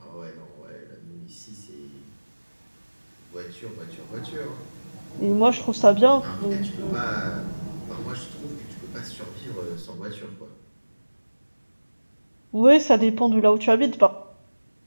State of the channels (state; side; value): inverted; both; correlation -1.00